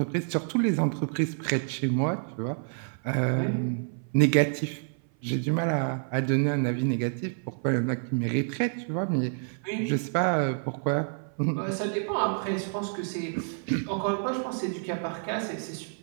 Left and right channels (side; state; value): left; silent; 57 dB below the other